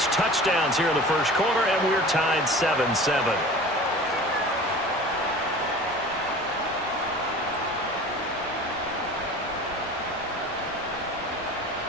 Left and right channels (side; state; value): both; normal; correlation 0.40